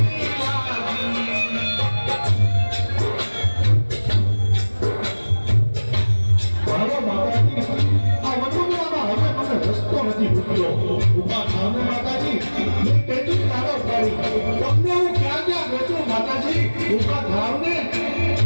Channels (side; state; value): both; inverted; correlation -1.00